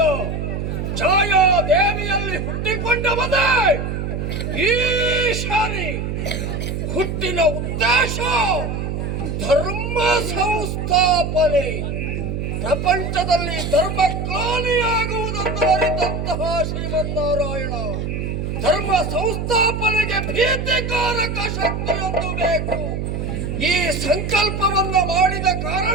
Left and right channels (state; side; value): noise; right; hum, 3 dB below the sound